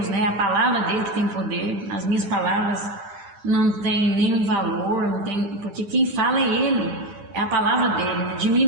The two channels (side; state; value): left; late; 10 ms